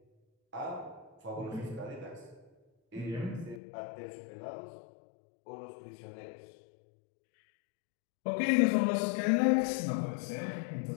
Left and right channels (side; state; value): right; drops out; at 3.6 s